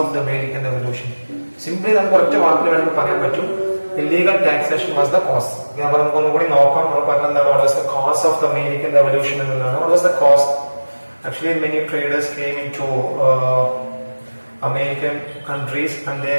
of the American Revolution? Simply നമുക്ക് ഒറ്റ വാക്കിൽ വേണമെങ്കിൽ പറയാൻ പറ്റും, illegal taxation was the cause. നമുക്ക് ഒന്നുകൂടി നോക്കാം. നമ്മൾ പറഞ്ഞത് എന്താണ്? What was the cause of the American Revolution എന്നുള്ളതാണ്. What was the cause? Actually many traders came into American countries and they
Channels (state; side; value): inverted; both; correlation -1.00